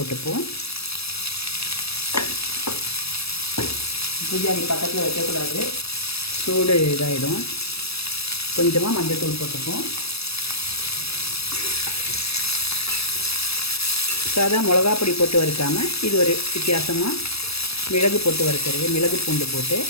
பூஜாரி பக்கத்தில் வைக்கக்கூடாது, சூடு இதாகிடும். கொஞ்சமாக மஞ்சள்தூள் போட்டுப்போம். சாதா மிளகா பொடி போட்டு வறுக்காமல் இது ஒரு வித்தியாசமாக மிளகு போட்டு வறுக்கிறது. மிளகு பூண்டு போட்டு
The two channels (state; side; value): late; right; 0.78 ms